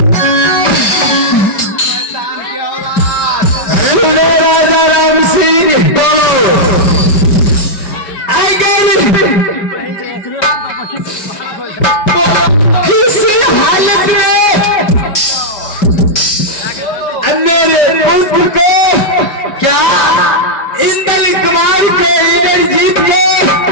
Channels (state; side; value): late; right; 5.1 ms